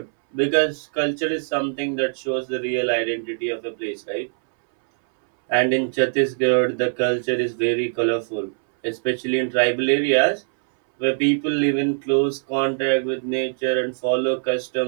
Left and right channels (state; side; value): silent; left; 64 dB below the other